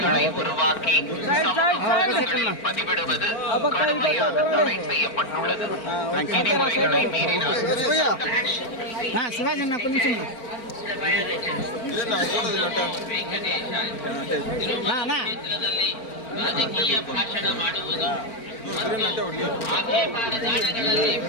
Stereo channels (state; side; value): late; right; 4.4 ms